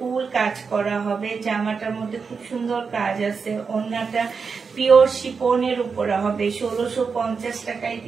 কাজ করা হবে। জামাটার মধ্যে খুব সুন্দর কাজ আছে। ওড়নাটা পিওর শিফনের উপরে হবে। 1650 টাকায়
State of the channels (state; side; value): quieter; left; 5.3 dB